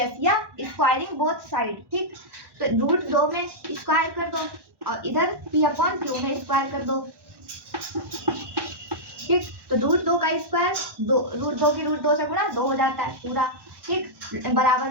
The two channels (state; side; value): late; left; 1.1 ms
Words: या स्क्वायरिंग बोथ साइड। ठीक, तो √2 में स्क्वायर कर दो और इधर P/Q में स्क्वायर कर दो। ठीक, तो √2 का स्क्वायर √2 की √2 से गुणा 2 हो जाता है पूरा। ठीक, बराबर